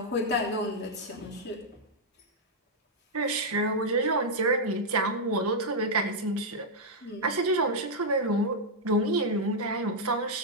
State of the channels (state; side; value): normal; both; correlation -0.05